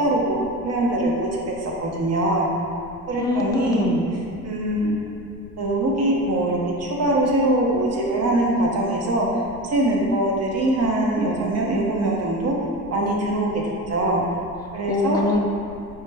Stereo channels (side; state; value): left; noise; rumble, 20 dB below the sound